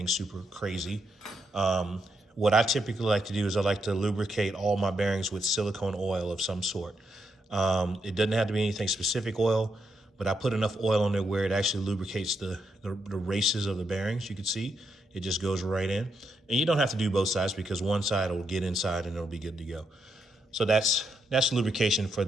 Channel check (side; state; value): both; normal; correlation 0.81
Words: super crazy. What I typically like to do is I like to lubricate all my bearings with silicone oil of some sort. It doesn't have to be anything specific oil, but I put enough oil on there where it actually lubricates the races of the bearings. You can see it just goes right in. And you don't have to do both sides, because one side will get inside and it'll be good to go. So that's lubrication for